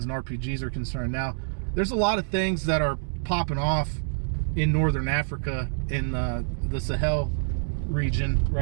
and RPGs are concerned. Now, there's a lot of things that are popping off in northern Africa, in the Sahel region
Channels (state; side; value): silent; left; digital silence